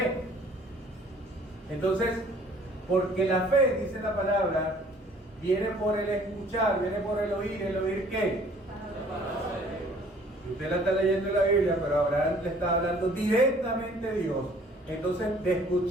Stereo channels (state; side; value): normal; both; correlation 0.55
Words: Entonces, porque la fe, dice la palabra, viene por el escuchar, viene por el oír ¿qué? Usted la está leyendo en la Biblia, pero Abraham le está hablando directamente a Dios. Entonces, de